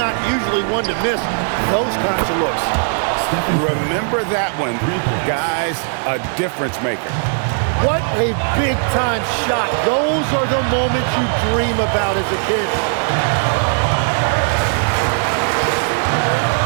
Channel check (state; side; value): silent; left; 64 dB below the other